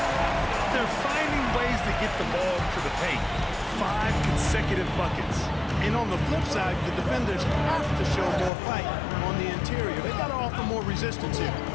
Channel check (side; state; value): right; drops out; at 8.5 s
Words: They're finding ways to get the ball to the paint. 5 consecutive buckets. And on the flip side, the defenders have to show more fight on the interior. They got to offer more resistance here.